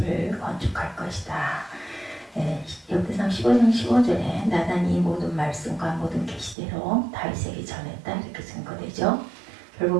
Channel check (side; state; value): left; drops out; at 6.6 s